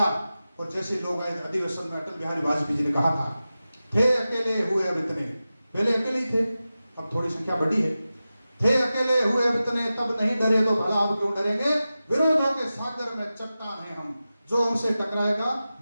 और जैसे लोग आए अधिवेशन में, अटल बिहारी वाजपेयी जी ने कहा था, थे अकेले हुए अब इतने, पहले अकेले ही थे, अब थोड़ी संख्या बढ़ी है, थे अकेले हुए अब इतने, तब नहीं डरे तो भला अब क्यों डरेंगे, विरोधों के सागर में चट्टान हैं हम, जो हमसे टकराएगा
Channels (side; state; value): both; inverted; correlation -0.94